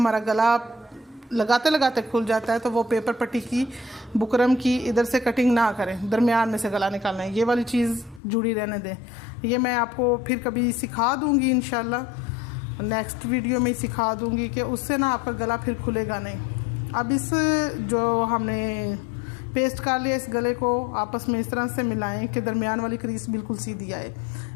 गला लगाते लगाते खुल जाता है तो वो पेपर पट्टी की बुकरम की इधर से कटिंग ना करें, दरमियान में से गला निकालना है। ये वाली चीज़ जुड़ी रहने दें। ये मैं आपको फिर कभी सिखा दूँगी, इंशाल्लाह नेक्स्ट वीडियो में सिखा दूँगी कि उससे ना आपका गला फिर खुलेगा नहीं। अब इस जो हमने पेस्ट कर लिया, इस गले को आपस में इस तरह से मिलाएं कि दरमियान वाली क्रीज बिल्कुल सीधी आए।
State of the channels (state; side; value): drops out; right; at 8.2 s